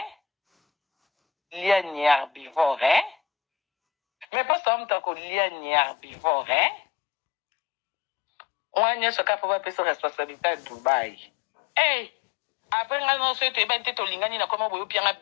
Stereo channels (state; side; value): drops out; right; at 4.2 s